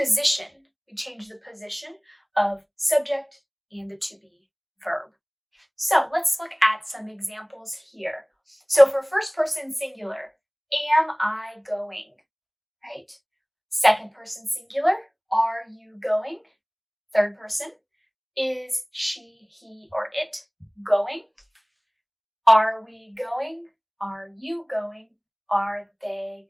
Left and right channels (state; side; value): identical; both; correlation 1.00